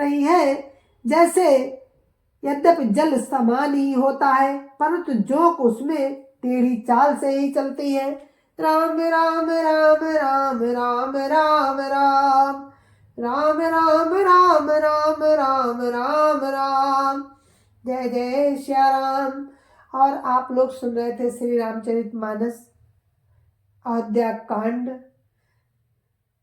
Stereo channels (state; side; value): identical; both; correlation 1.00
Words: है। जैसे यद्यपि जल समान ही होता है परंतु जोक उसमें टेढ़ी चाल से ही चलती है। राम राम राम राम राम राम राम राम राम राम राम राम राम राम। जय जय श्या राम। और आप लोग सुन रहे थे श्री रामचरितमानस अयोध्या कांड,